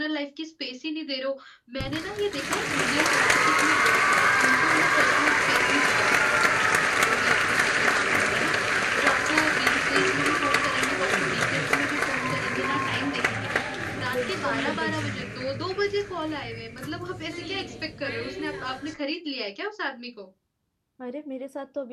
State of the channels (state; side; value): identical; both; correlation 1.00